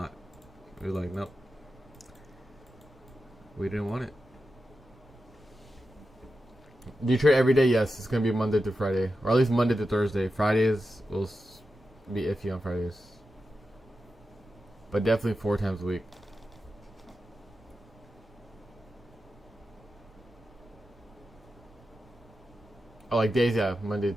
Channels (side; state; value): both; normal; correlation 0.90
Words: We were like, nope. We didn't want it. Do you trade every day? Yes, it's going to be Monday to Friday. Or at least Monday to Thursday. Fridays will be iffy on Fridays. But definitely 4 times a week. Oh, like days, yeah. Monday